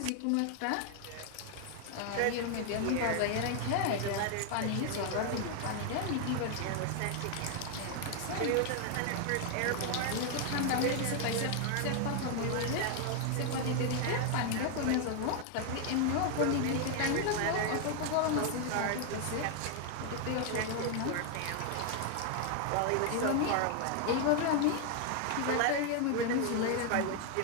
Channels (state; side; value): different; both; correlation 0.00